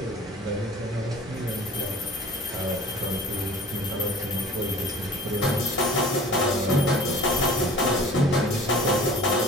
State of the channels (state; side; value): normal; both; correlation 0.44